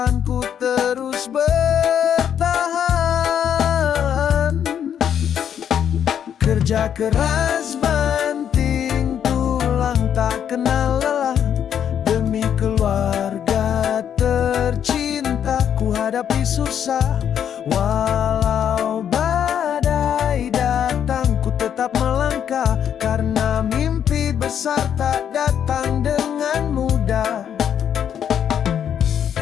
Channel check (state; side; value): quieter; right; 8.9 dB